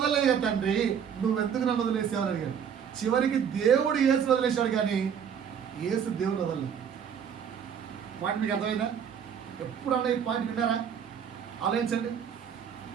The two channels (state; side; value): quieter; left; 7.9 dB